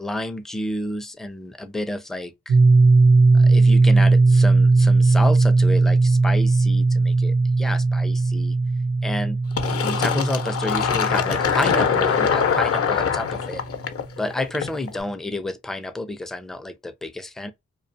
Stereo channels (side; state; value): both; normal; correlation 0.82